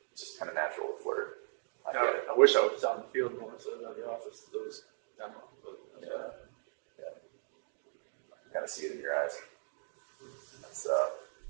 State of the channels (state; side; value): silent; left; digital silence